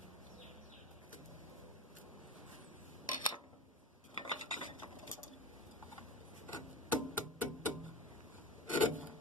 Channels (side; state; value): both; normal; correlation 0.31